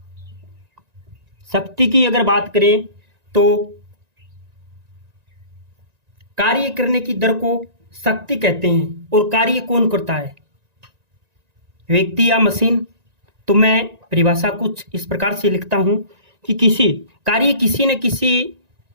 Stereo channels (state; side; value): late; left; 1.9 ms